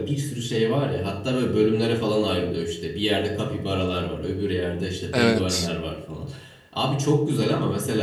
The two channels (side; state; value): both; identical; correlation 1.00